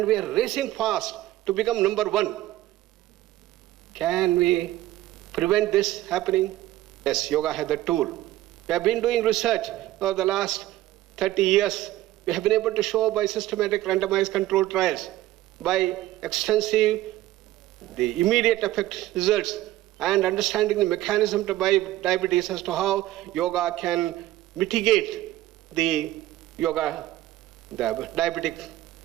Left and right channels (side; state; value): left; quieter; 15.5 dB